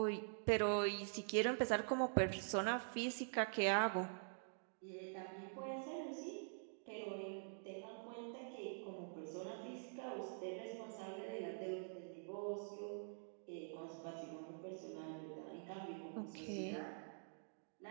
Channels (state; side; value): silent; left; digital silence